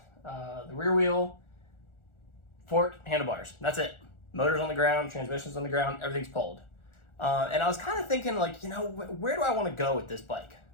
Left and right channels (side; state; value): right; late; 1.4 ms